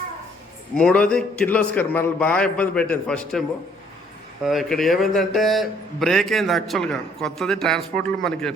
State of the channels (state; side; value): normal; both; correlation 0.63